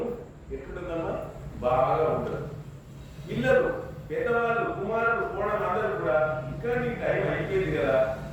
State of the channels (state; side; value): identical; both; correlation 1.00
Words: ఎట్లుంటుందమ్మా? బాగా ఉంటుంది. పిల్లలు, పెద్దవాళ్ళు, కుమారులు, కోడలు అందరూ కూడా ఇంకా నీకు టైం అయిపోయింది కదా,